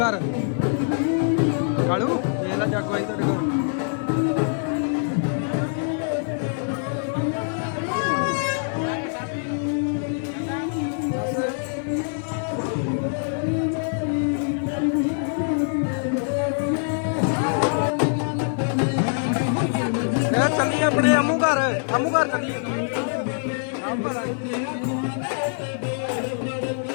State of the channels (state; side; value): silent; right; 57 dB below the other